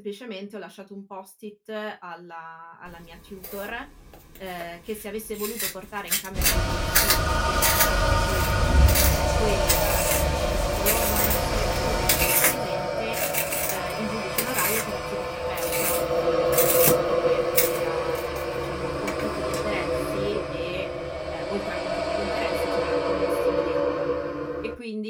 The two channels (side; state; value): both; identical; correlation 1.00